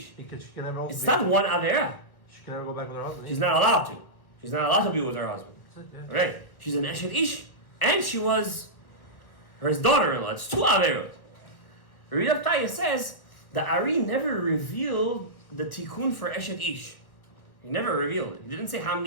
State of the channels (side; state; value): right; late; 1.6 ms